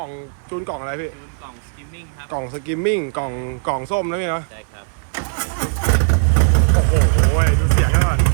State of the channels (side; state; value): left; silent; digital silence